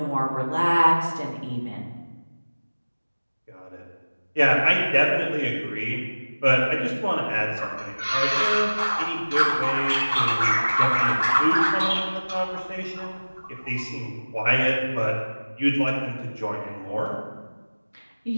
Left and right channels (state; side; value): inverted; both; correlation -1.00